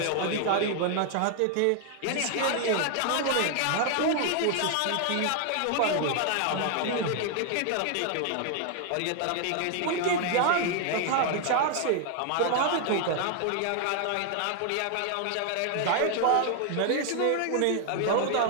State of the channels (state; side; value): different; both; correlation 0.00